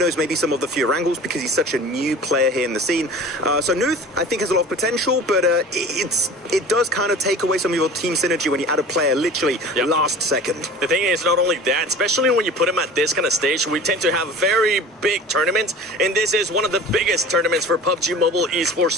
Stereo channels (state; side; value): normal; both; correlation 0.40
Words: maybe some of the fewer angles because he's such a new player here in the scene. So Nuth, I think, has a lot of potential, but it does kind of take away some of your team synergy when you add a player literally last second. The thing is, not only that, especially when you put him at this kind of stage, we tend to have very big tournaments, and this is one of the biggest tournaments for PUBG Mobile